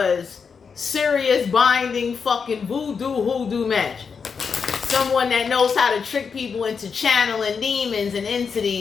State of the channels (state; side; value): quieter; right; 5.9 dB